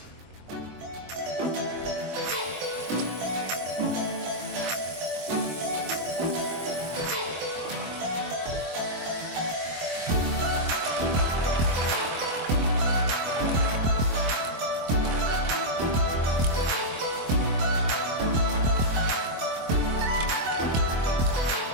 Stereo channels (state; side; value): late; left; 24 ms